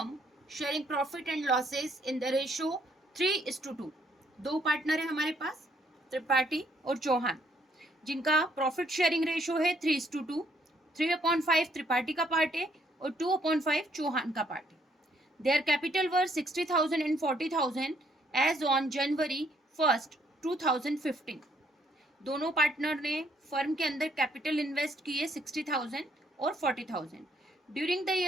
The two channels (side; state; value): both; normal; correlation 0.69